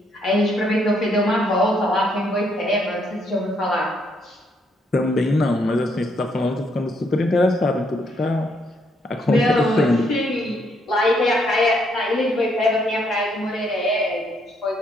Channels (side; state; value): both; normal; correlation 0.72